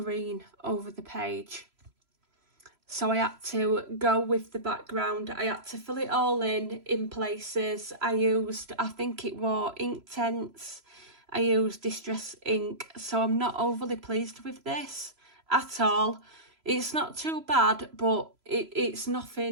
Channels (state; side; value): late; left; 3.0 ms